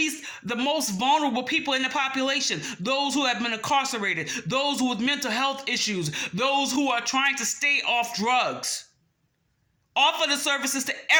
most vulnerable people in the population. Those who have been incarcerated, those with mental health issues, those who are trying to stay off drugs. Offer the services to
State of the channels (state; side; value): identical; both; correlation 1.00